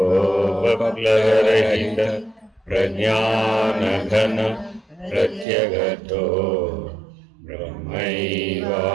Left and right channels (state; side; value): drops out; left; at 5.5 s